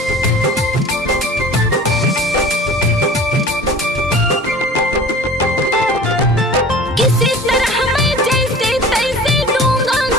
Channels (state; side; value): normal; both; correlation 0.42